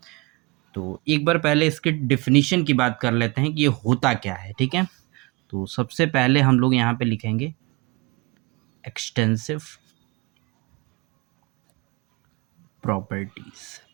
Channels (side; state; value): left; quieter; 25.5 dB